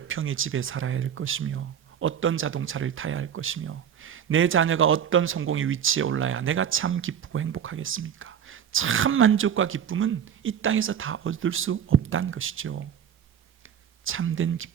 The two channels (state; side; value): quieter; left; 8.7 dB